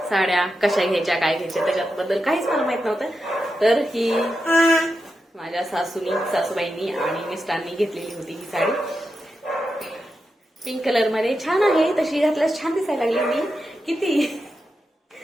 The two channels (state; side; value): normal; both; correlation 0.88